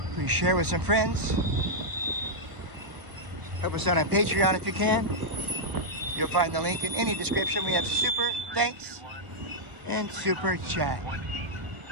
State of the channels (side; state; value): left; late; 1.1 ms